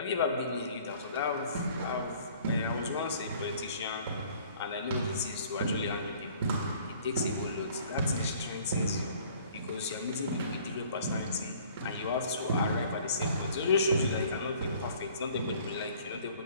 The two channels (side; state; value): both; inverted; correlation -0.54